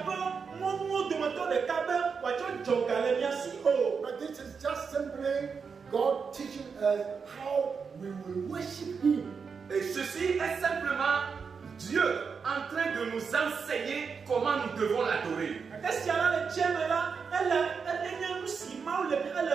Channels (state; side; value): quieter; left; 5.7 dB